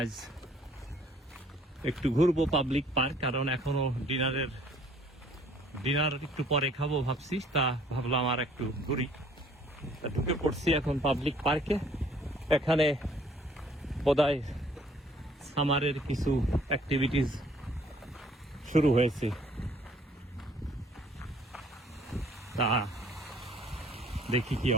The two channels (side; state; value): both; normal; correlation 0.59